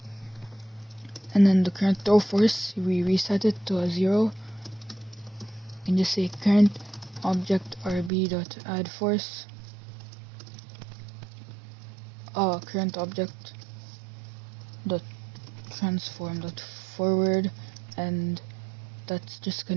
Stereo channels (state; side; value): drops out; left; at 8.1 s